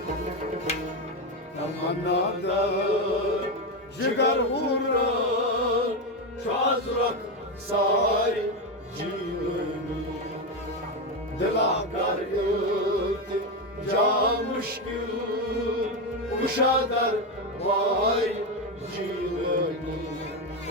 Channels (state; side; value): normal; both; correlation 0.11